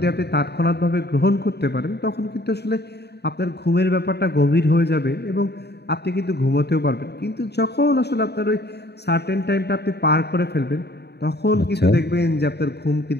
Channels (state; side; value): late; right; 0.48 ms